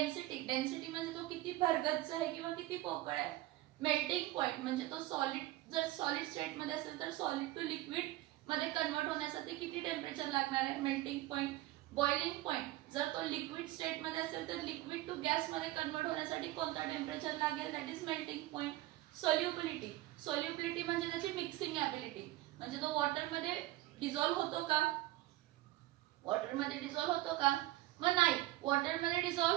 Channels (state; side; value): quieter; left; 16.8 dB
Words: डेन्सिटी म्हणजे तो किती भरगच्च आहे किंवा किती पोकळ आहे. मेल्टिंग पॉइंट म्हणजे तो सॉलिड, जर सॉलिड स्टेट मध्ये असेल तर सॉलिड टू लिक्विड मध्ये कन्वर्ट होण्यासाठी किती टेम्परेचर लागणार आहे, मेल्टिंग पॉइंट. बॉइलिंग पॉइंट, जर तो लिक्विड स्टेट मध्ये असेल तर लिक्विड टू गॅस मध्ये कन्वर्ट होण्यासाठी कोणता टेम्परेचर लागेल, that is melting point. Solubility, solubility म्हणजे त्याची मिक्सिंग ॲबिलिटी, म्हणजे तो वॉटर मध्ये डिझॉल्व्ह होतो का, वॉटर मध्ये डिझॉल्व्ह होतो का, मग नाही, वॉटर मध्ये